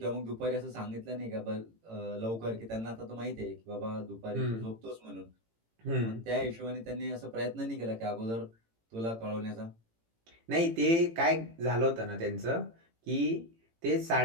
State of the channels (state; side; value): late; left; 18 ms